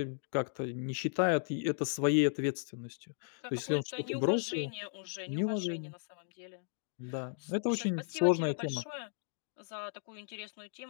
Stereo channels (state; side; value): silent; right; digital silence